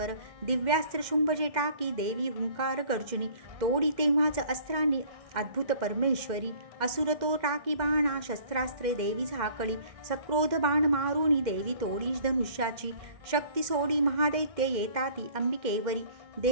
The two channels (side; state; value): left; late; 2.1 ms